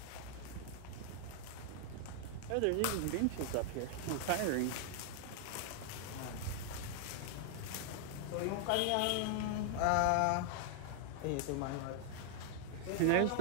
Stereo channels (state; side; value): different; both; correlation 0.00